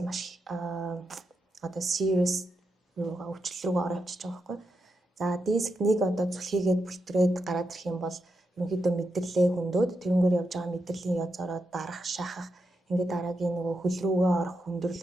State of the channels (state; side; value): normal; both; correlation 0.85